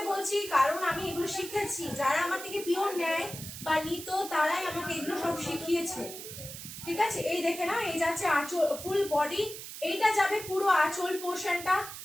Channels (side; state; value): right; noise; hiss, 11 dB below the sound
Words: বলছি কারণ আমি এগুলো শিখেছি, যারা আমার থেকে পিওর নেয় বা নিত তারাই আমাকে এগুলো সব শিখিয়েছে। ঠিক আছে, এই দেখে না, এই যাচ্ছে আঁচল, ফুল বডি, এইটা যাবে পুরো আঁচল পোর্শনটা,